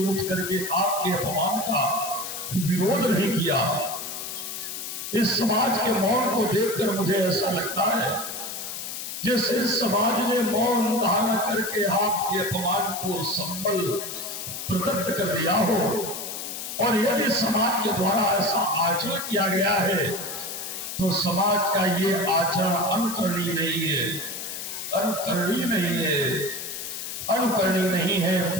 उठ करके आपके अपमान का विरोध नहीं किया। इस समाज के मौन को देखकर मुझे ऐसा लगता है जैसे इस समाज ने मौन धारण करके आपके अपमान को संबल प्रदत्त कर दिया हो, और यदि समाज के द्वारा ऐसा आचरण किया गया है तो समाज का ये आचरण अनुकरणीय नहीं है, अनुकरणीय नहीं है, अनुकरणीय नहीं है।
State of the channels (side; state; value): left; noise; hiss, 7 dB below the sound